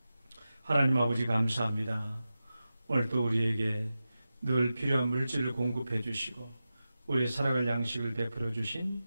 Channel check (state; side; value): inverted; both; correlation -0.93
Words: 하나님 아버지 감사합니다. 오늘도 우리에게 늘 필요한 물질을 공급해 주시고 우리의 살아갈 양식을 베풀어 주신